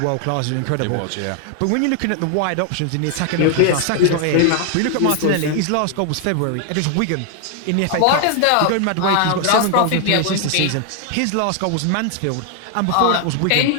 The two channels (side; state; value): both; different; correlation 0.00